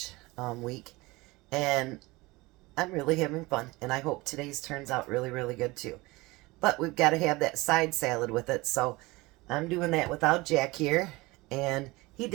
week, and I'm really having fun, and I hope today's turns out really good too. But we've got to have that side salad with it, so I'm doing that without Jack here, and he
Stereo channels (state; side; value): quieter; left; 22.1 dB